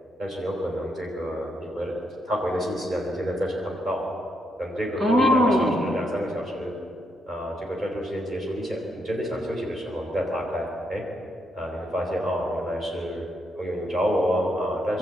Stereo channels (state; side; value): normal; both; correlation 0.79